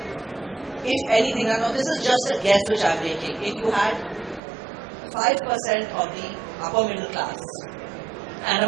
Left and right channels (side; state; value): left; drops out; at 4.4 s